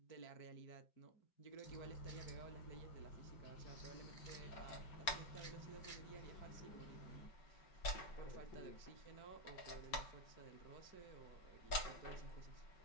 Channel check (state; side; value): late; right; 5.3 ms